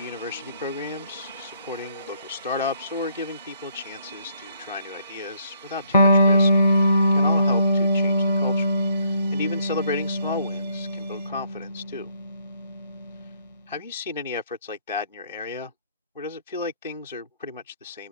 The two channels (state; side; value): inverted; both; correlation -0.68